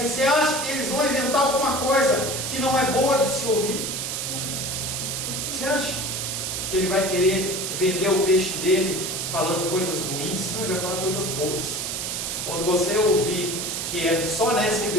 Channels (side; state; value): right; noise; hiss, 3 dB below the sound